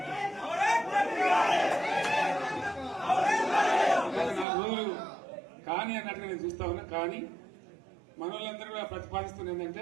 నా రోజులు కానీ అన్నట్టుగా నేను చూస్తా ఉన్నా. కానీ మనోళ్ళందరూ కూడా ప్రతిపాదిస్తుంది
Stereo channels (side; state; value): left; drops out; at 4.5 s